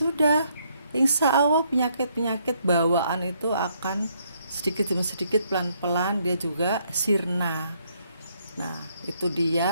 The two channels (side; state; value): both; inverted; correlation -0.71